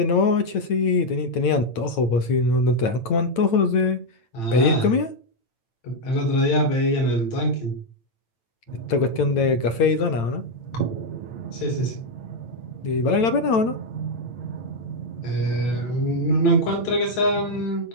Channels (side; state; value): right; late; 8.9 ms